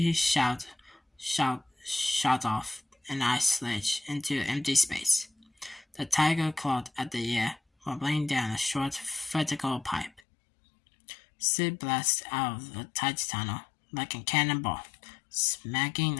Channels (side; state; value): right; drops out; at 10.2 s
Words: shot off an ice ledge into empty space. The tiger clawed at the air, wobbling down a short vertical pipe. Sid blasted out of the tight tunnel like a cannonball, smacking